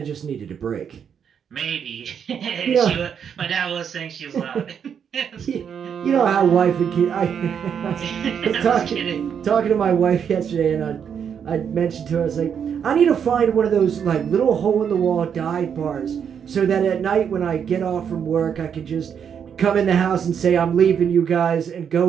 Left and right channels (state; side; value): quieter; left; 7.7 dB